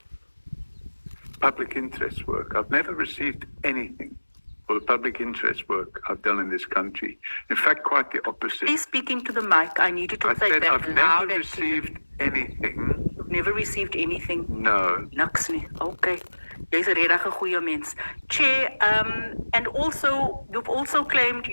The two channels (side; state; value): both; inverted; correlation -1.00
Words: Public interest work. I've never received anything for the public interest work I've done in this country. In fact, quite the opposite. Please speak into the mic. I need you to say that I've loud. never received anything. You've never received anything? No. Niks nie. Okay. Jy's 'n regtig goeie mens. Chair, and also, you've also claimed